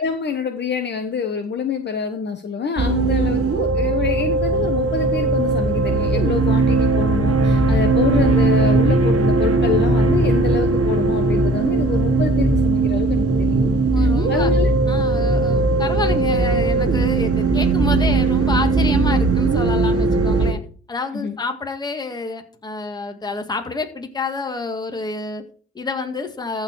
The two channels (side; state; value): both; normal; correlation 0.47